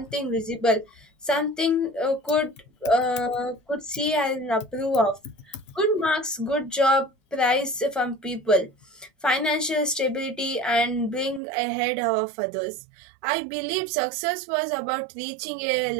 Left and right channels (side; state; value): left; drops out; at 11.4 s